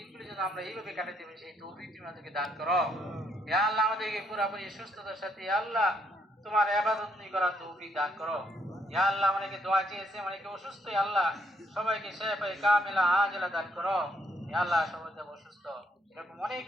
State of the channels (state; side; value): normal; both; correlation 0.72